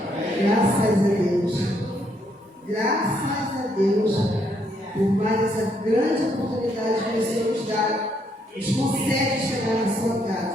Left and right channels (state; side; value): normal; both; correlation 0.73